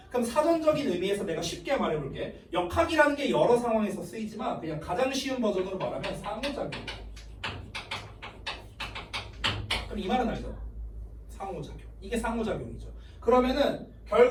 그럼 사전적인 의미에서 내가 쉽게 말해볼게. 역학이라는 게 여러 상황에서 쓰이지만 그냥 가장 쉬운 버전으로 말하면 상호작용. 그럼 이 말은 알죠? 상호작용. 이게 상호작용이죠. 그러면은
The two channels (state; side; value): identical; both; correlation 1.00